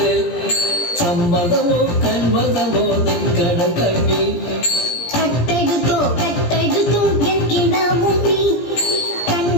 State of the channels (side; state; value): right; late; 17 ms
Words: സമ്മതമോ കന്മതമോ നിൻകട കണ്ണിൽ